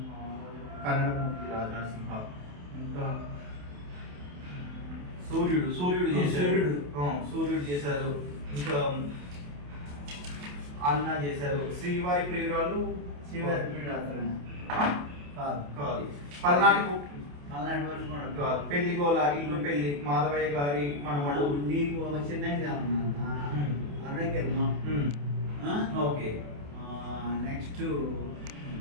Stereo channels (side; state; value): left; late; 28 ms